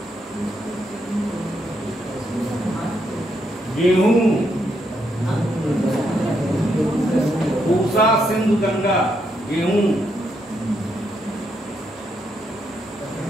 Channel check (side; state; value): both; normal; correlation 0.78